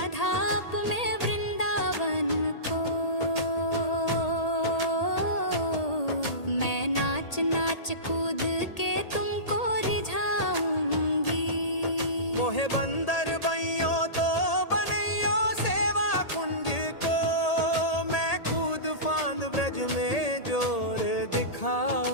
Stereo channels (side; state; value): right; late; 1.8 ms